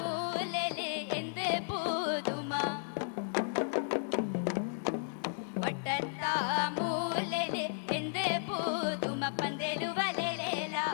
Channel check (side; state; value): right; silent; digital silence